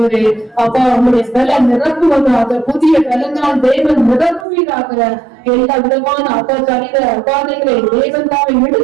அப்பா நம்முடைய பலன் நிரப்புவதாக, புதிய பலனால் தேவன் நிரப்புவீராக. எல்லா விதமான அப்பா சரீர அபாதைகளை தேவன் தாவை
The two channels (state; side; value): drops out; left; at 4.5 s